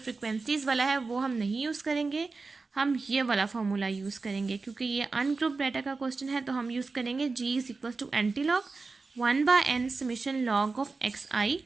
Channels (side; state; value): left; quieter; 4.0 dB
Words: वाला है वो हम नहीं यूज़ करेंगे, हम ये वाला फार्मूला यूज़ करेंगे। क्योंकि ये अनग्रुप डाटा का क्वेश्चन है तो हम यूज़ करेंगे G is equal to anti log 1/n summation log of xi।